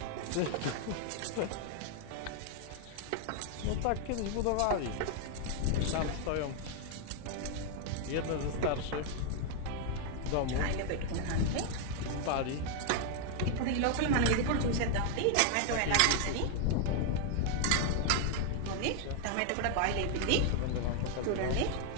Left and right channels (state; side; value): different; both; correlation 0.00